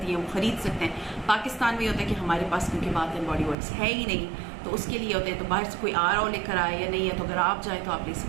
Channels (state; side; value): drops out; left; at 3.6 s